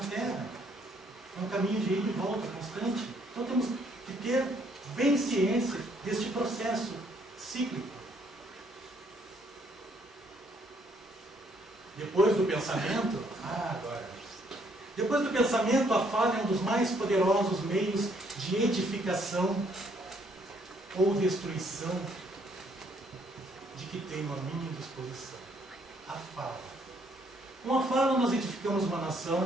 É um caminho de ida e volta constante. Então temos que ter bem ciência deste processo cíclico. Depois do pensamento, depois do pensamento, a fala é um dos mais poderosos meios de edificação ou destruição de que tenho a minha disposição. A fala. Com a fala nós edificamos uma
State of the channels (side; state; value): both; normal; correlation 0.68